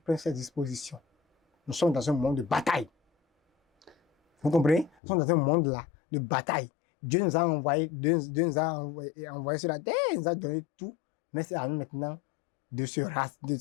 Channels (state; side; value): drops out; right; at 4.9 s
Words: ses dispositions. Nous sommes dans un monde de bataille. Vous comprenez? Nous sommes dans un monde là de bataille. Dieu nous a envoyé sur la terre, il nous a donné tout, mais c'est à nous maintenant de se